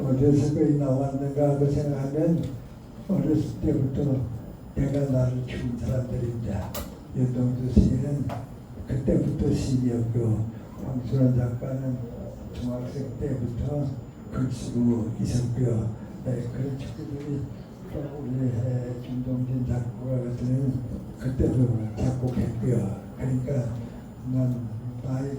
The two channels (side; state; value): both; identical; correlation 1.00